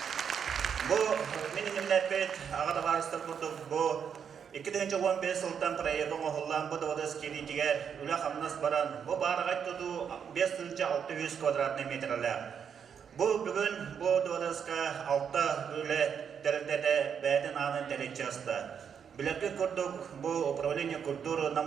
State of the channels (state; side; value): quieter; left; 7.4 dB